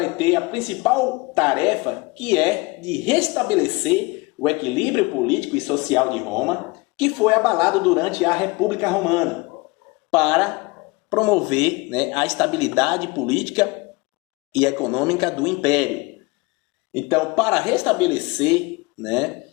ter a principal tarefa, que é de restabelecer o equilíbrio político e social de Roma, que foi abalado durante a República Romana, para promover a estabilidade política e econômica do Império. Então, para restabelecer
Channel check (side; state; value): right; quieter; 25.1 dB